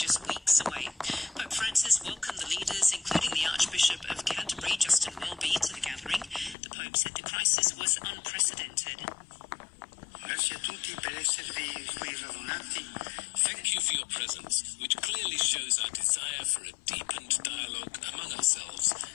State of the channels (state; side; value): drops out; right; at 6.6 s